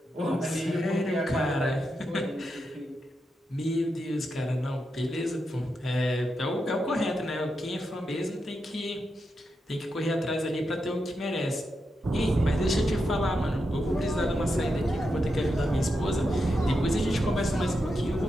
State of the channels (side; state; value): both; normal; correlation 0.86